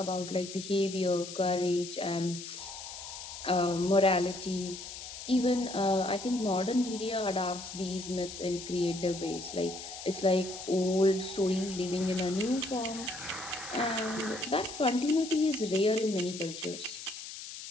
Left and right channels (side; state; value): left; noise; hiss, 10 dB below the sound